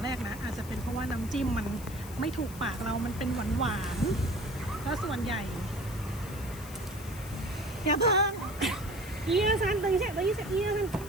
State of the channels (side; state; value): left; noise; hiss, 16 dB below the sound